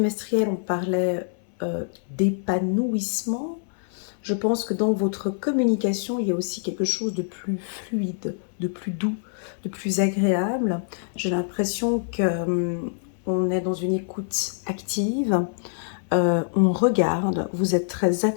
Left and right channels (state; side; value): silent; right; 58 dB below the other